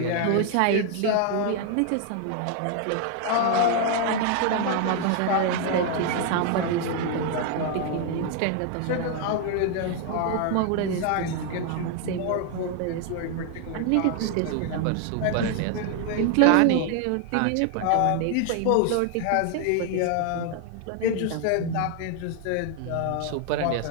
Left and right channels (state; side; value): different; both; correlation 0.00